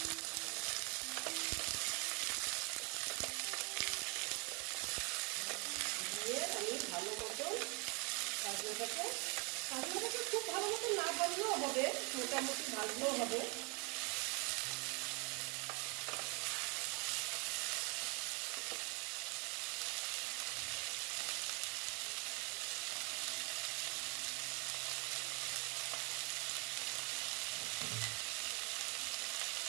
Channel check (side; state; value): left; quieter; 30.3 dB